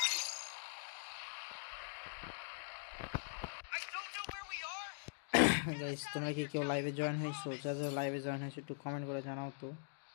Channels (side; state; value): right; silent; digital silence